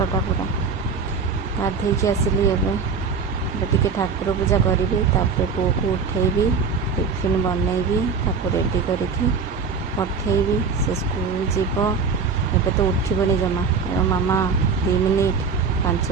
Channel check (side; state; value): left; quieter; 5.2 dB